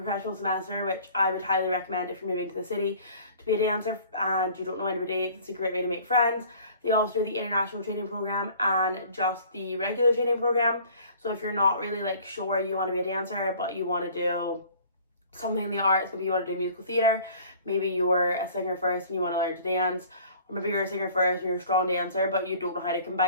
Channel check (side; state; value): both; inverted; correlation -0.50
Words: semester, which I would highly recommend if you're moving to the city to be a dancer and you don't know anybody. It's a great way to make friends. They also do the international training program and just the regular training program. So if you're not really like sure you want to be a dancer, but you want to do something in the arts, maybe you want to do musical theatre, maybe you're a singer first and you want to learn to dance, or maybe you're a singer first and you're a strong dancer but you don't know how to